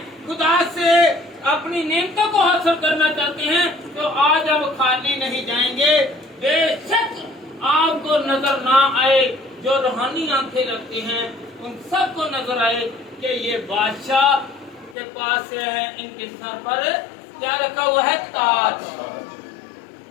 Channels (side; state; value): right; drops out; at 15.0 s